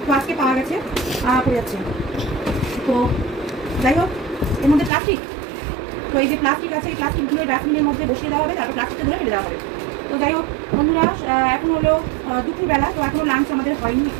তো আজকে পাওয়া গেছে, পড়ে যাচ্ছে। তো যাই হোক, এর মধ্যে প্লাস্টিক, তো এই যে প্লাস্টিক আছে, এই প্লাস্টিকগুলো ডাস্টবিনের মধ্যে বসিয়ে দেওয়া হবে, তারপর প্লাস্টিকটা ধরে ফেলে দেওয়া হবে। তো যাই হোক বন্ধুরা, এখন হলো দুপুরবেলা, তো এখনও লাঞ্চ আমাদের হয়নি,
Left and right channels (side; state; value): left; drops out; at 4.9 s